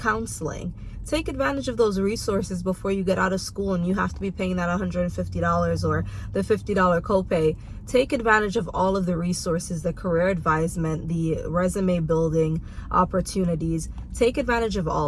Take advantage of those resources before you get out of school and you have to be paying that $150 or the $50 copay. Take advantage of all of the resources, the career advisement, the resume building opportunities. Take advantage of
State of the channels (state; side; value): identical; both; correlation 1.00